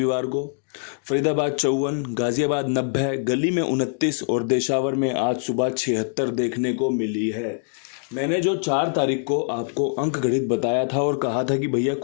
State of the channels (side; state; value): right; silent; digital silence